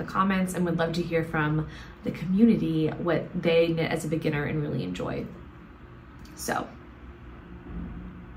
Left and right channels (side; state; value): both; identical; correlation 1.00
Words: comments, and would love to hear from the community what they knit as a beginner and really enjoy. So,